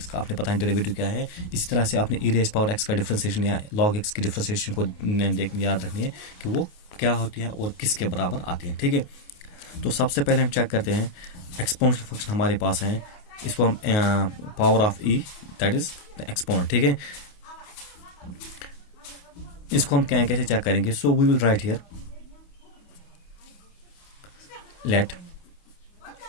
का आपने पता है डेरिवेटिव क्या है, इसी तरह से आपने ई रेज़ पावर एक्स का डिफ्रेंसिएशन या लॉग एक्स की डिफ्रेंसिएशन को याद रखनी है कि वो क्या होती है और किसके बराबर आती है। ठीक है, तो सबसे पहले हम चेक करते हैं एक्सपोनेंशियल फंक्शन हमारे पास है, इसको हम power of e that is the exponent. ठीक है, इसको हम क्या कैसे चेक करेंगे। So we will write here let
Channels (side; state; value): right; late; 28 ms